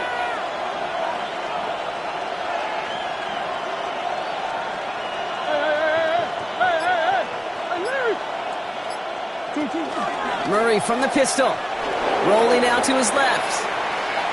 Murray from the pistol. Rolling out to his left.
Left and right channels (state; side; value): identical; both; correlation 1.00